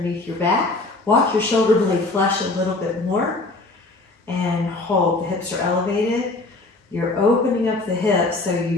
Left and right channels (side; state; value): right; quieter; 3.1 dB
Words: your back. Walk your shoulder blade flesh a little bit more and hold. The hips are elevated. You're opening up the hips so